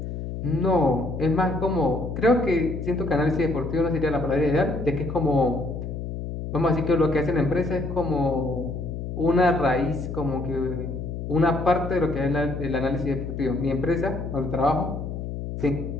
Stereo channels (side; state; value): left; noise; hum, 6 dB below the sound